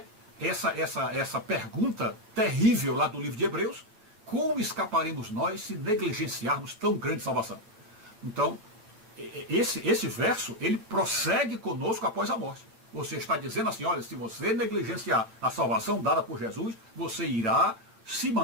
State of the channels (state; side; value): late; left; 9.0 ms